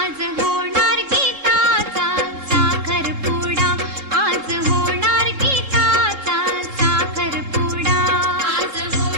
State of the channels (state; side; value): late; left; 3.7 ms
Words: होणार गीताचा साखरपुडा, आज होणार गीताचा साखरपुडा. आज